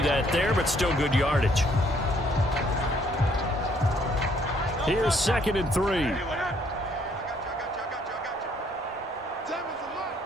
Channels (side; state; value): both; normal; correlation 0.66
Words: that there, but still good yardage. Here's 2nd and 3.